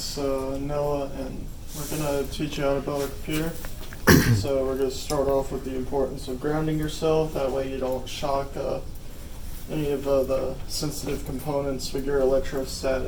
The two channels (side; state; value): both; identical; correlation 1.00